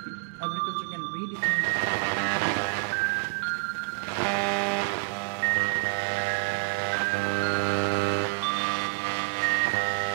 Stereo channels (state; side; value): silent; left; digital silence